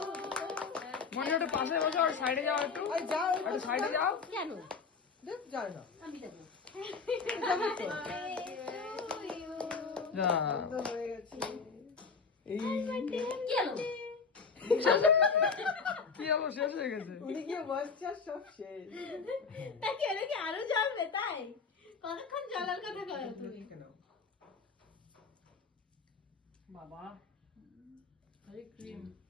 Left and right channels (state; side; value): quieter; right; 5.1 dB